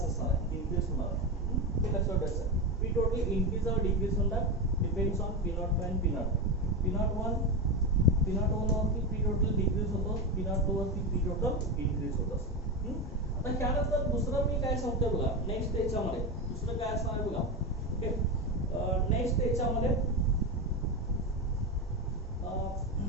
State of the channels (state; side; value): normal; both; correlation 0.15